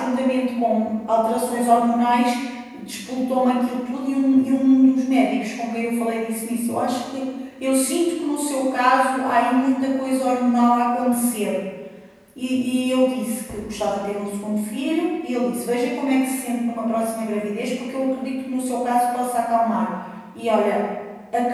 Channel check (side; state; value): both; identical; correlation 1.00